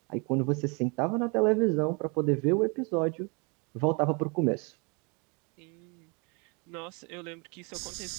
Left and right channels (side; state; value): left; quieter; 32.1 dB